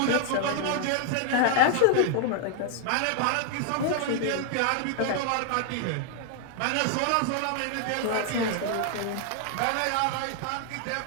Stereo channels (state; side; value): different; both; correlation 0.00